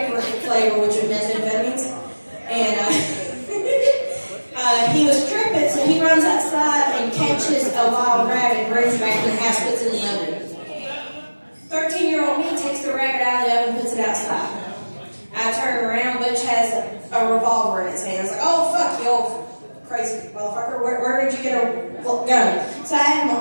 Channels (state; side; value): inverted; both; correlation -1.00